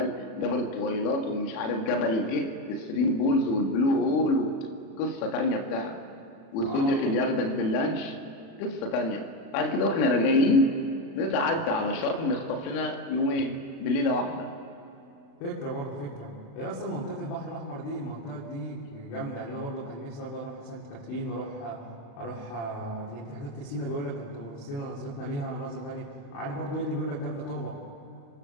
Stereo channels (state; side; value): late; right; 36 ms